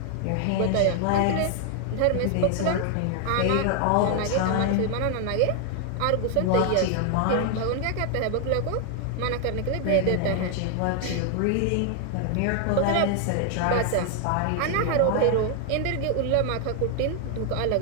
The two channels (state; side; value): different; both; correlation 0.00